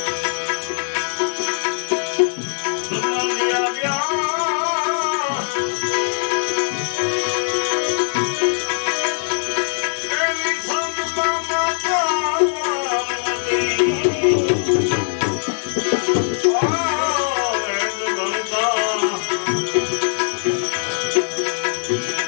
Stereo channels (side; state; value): right; silent; digital silence